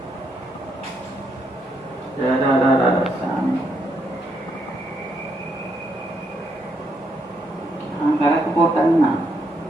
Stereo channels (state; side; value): normal; both; correlation 0.76